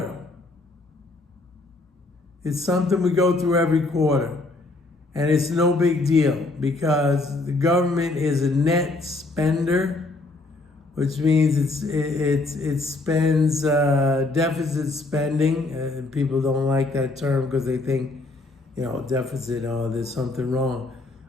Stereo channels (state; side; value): quieter; right; 3.1 dB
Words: It's something we go through every quarter. And it's no big deal because the government is a net spender, which means it spends deficit spending. People don't like that term because they think, deficit, there's something wrong.